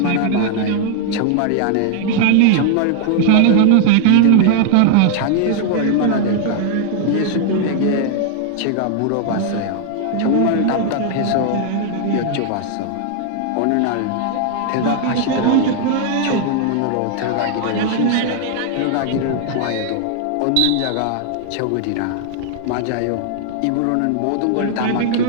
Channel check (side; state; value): both; different; correlation 0.00